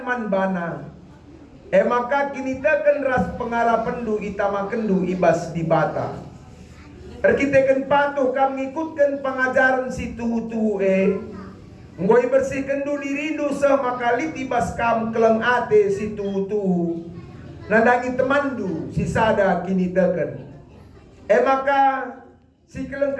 manbana. Maka kini teken ras pengarapendu itamakendu ibas di bata. Kita patuh kami ikutkan pengajaran si tuhu-tuhu Ngoi bersihkan du dirindu maka litibas kam keleng ate si tuhu-tuhu. Nandangi temandu si sada kini teken. Maka si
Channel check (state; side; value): identical; both; correlation 1.00